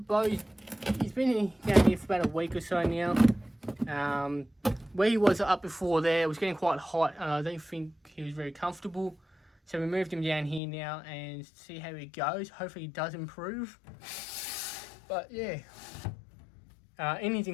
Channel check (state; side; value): drops out; right; at 10.6 s